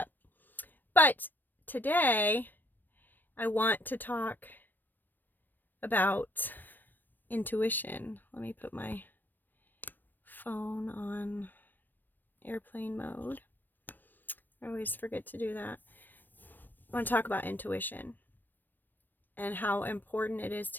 But today, I want to talk about intuition. Let me put my phone on airplane mode. I always forget to do that. I want to talk about intuition and how important it is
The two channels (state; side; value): late; right; 0.091 ms